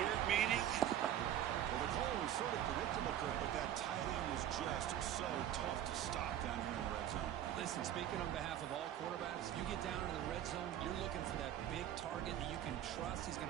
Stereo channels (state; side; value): quieter; left; 11.2 dB